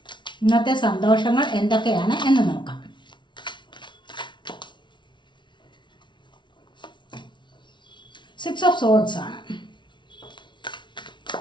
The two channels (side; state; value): right; late; 0.23 ms